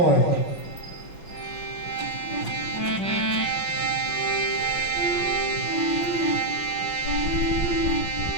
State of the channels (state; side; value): late; right; 5.8 ms